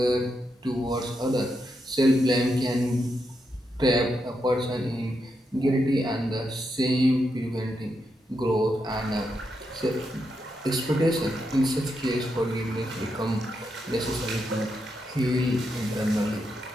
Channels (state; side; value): normal; both; correlation 0.83